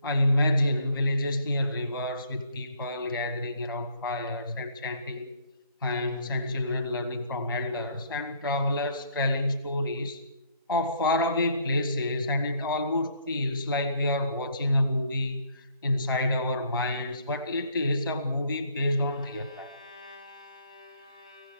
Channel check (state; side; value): inverted; both; correlation -0.64